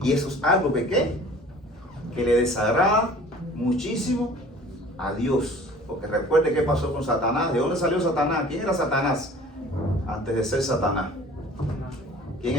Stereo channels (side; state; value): both; normal; correlation 0.47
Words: Y eso es algo que le desagrada muchísimo a Dios. Porque recuerde qué pasó con Satanás. ¿De dónde salió Satanás? ¿Quién era Satanás? Antes de ser Satanás. ¿Quién